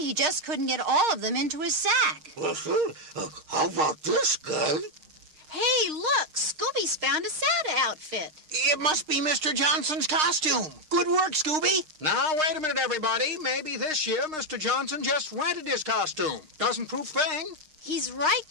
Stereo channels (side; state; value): left; late; 6.5 ms